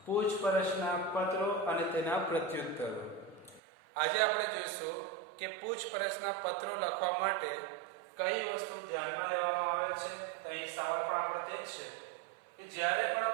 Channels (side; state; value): left; drops out; at 3.6 s